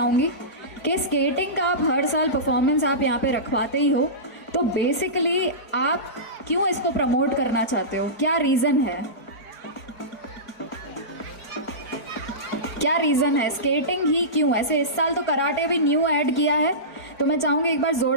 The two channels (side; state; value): right; late; 4.6 ms